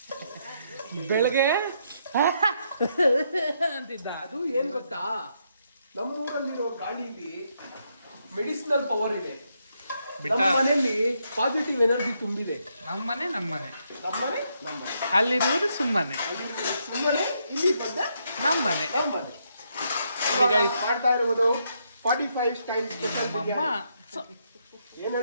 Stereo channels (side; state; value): both; inverted; correlation -0.77